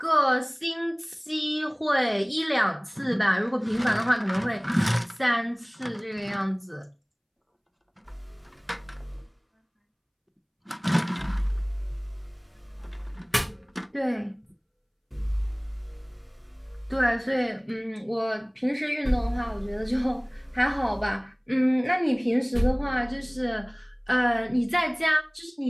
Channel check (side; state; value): both; identical; correlation 1.00